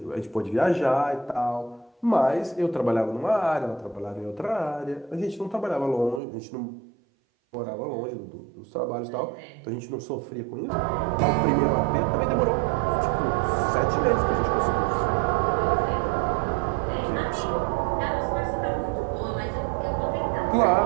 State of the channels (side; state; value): left; drops out; at 6.2 s